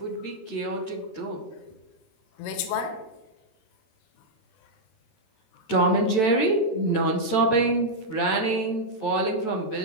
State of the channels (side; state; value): right; late; 13 ms